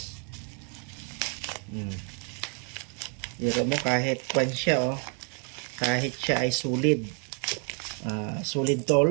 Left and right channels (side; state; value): left; quieter; 38.6 dB